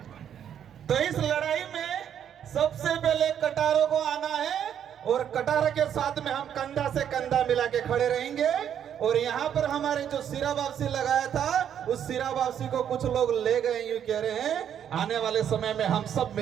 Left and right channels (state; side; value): quieter; left; 9.2 dB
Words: तो इस लड़ाई में सबसे पहले कटारों को आना है, और कटारा के साथ में हम कंधा से कंधा मिला के खड़े रहेंगे। और यहाँ पर हमारे जो सिरा वापसी लगाया था, उस सिरा वापसी को कुछ लोग ले गए, यूं कह रहे हैं आने वाले समय में हम सब